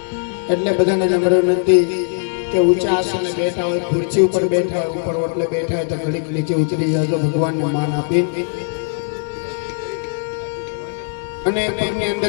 એટલે બધાને નમ્ર વિનંતી કે ઊંચા આસને બેઠા હોય, ખુરશી ઉપર બેઠા હોય, ઉપર ઓટલે બેઠા હોય તો ઘડીક નીચે ઉતરી જાજો, ભગવાનને માન આપી અને પગની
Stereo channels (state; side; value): silent; right; 66 dB below the other